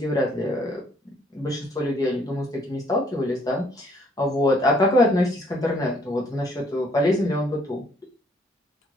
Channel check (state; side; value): normal; both; correlation 0.64